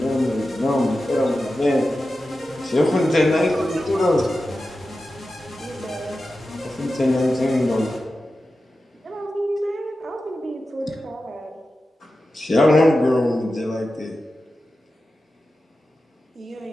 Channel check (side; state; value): both; normal; correlation 0.93